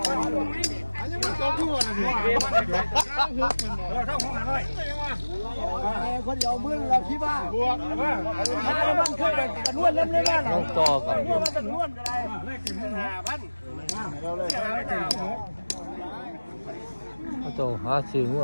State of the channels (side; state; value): both; inverted; correlation -1.00